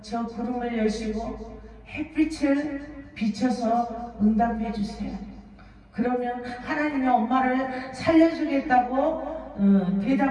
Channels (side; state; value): both; identical; correlation 1.00